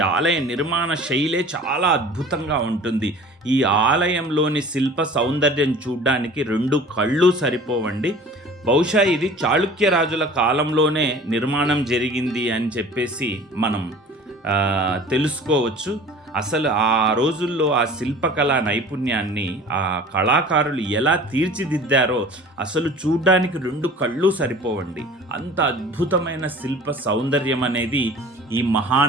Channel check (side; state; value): both; normal; correlation 0.44